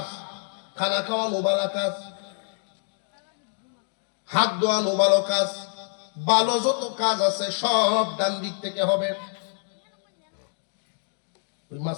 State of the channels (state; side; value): silent; right; 58 dB below the other